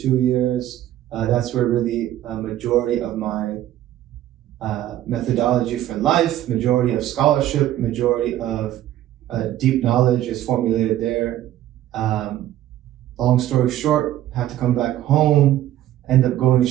years. That's where really a majority of my methodology for life, majority of scholarship, majority of deep knowledge is formulated there. Long story short, had to come back home, end up going to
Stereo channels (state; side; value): quieter; left; 13.2 dB